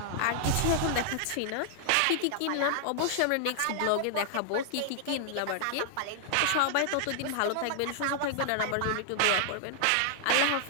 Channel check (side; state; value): both; different; correlation -0.01